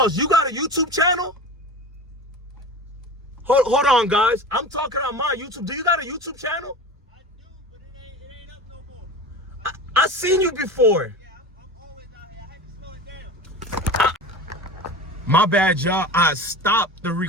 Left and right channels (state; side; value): normal; both; correlation 0.32